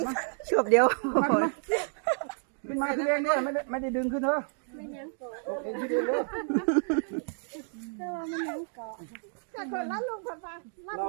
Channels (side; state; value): left; silent; 58 dB below the other